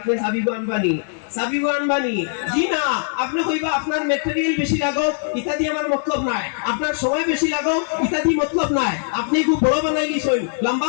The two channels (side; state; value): right; silent; digital silence